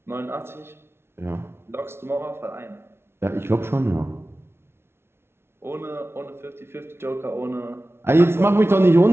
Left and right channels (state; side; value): late; left; 0.12 ms